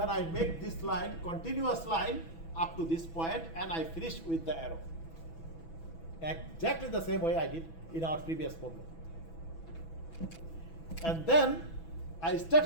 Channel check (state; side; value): late; right; 6.1 ms